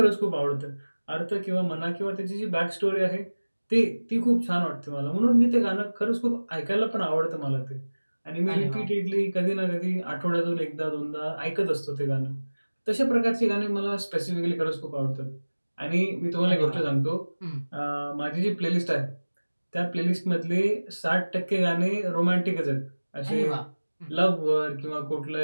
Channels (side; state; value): both; inverted; correlation -1.00